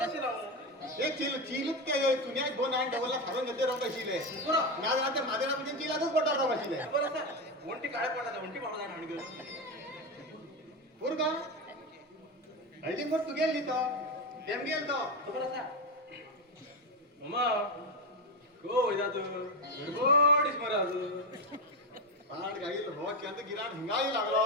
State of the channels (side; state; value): both; normal; correlation 0.13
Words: तशी लावून एक चिलूत के तुन्या दोन आणि डबलला फारून घेते राव कशीले माझ्या रात्री माझ्या रात्री चिलातच पडणार राव कशीले बरं असं ओंटी काळे पडायचं ओंटी पाडा जाणार आणि पूर का हळदी मग तू गेली तो तेम गेल तो बरं असा मम्मा हो वैदा तू गडबडीच मरा पाड गाईल रोज चंद गिराण हिंगाही लागलो